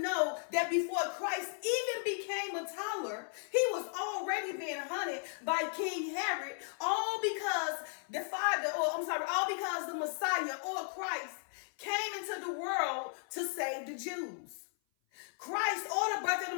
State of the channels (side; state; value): right; silent; 54 dB below the other